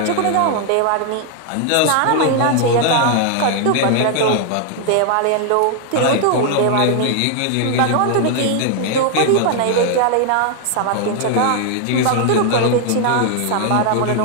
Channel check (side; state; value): both; different; correlation 0.00